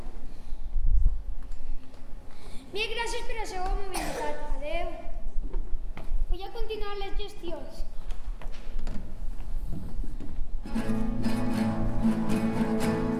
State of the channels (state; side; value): identical; both; correlation 1.00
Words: Mil gràcies per la seva mobilitat. Adeu. Vull a continuar les gestions.